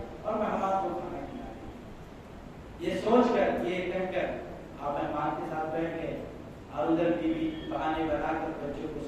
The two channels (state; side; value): identical; both; correlation 1.00